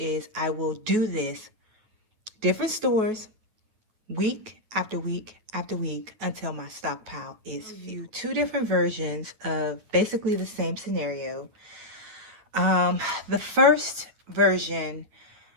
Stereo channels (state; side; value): late; left; 9.3 ms